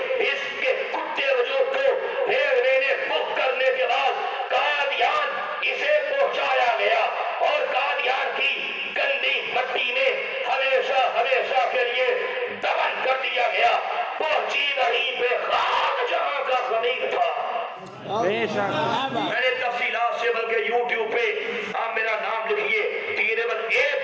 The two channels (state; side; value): identical; both; correlation 1.00